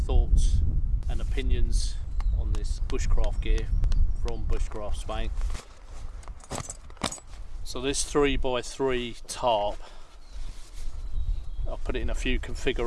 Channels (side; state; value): both; identical; correlation 1.00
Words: and opinions on this bushcraft gear from Bushcraft Spain. So this 3x3 tarp, I'll put it in a few